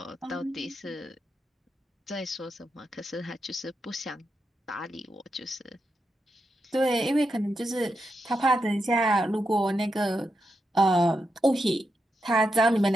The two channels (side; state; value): both; normal; correlation 0.85